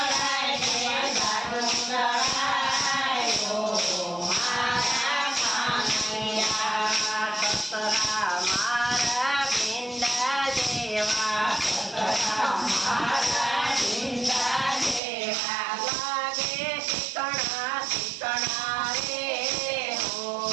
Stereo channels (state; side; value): drops out; left; at 15.0 s